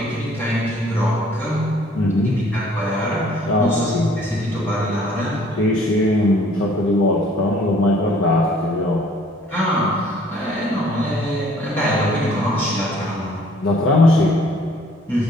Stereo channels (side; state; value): both; normal; correlation 0.57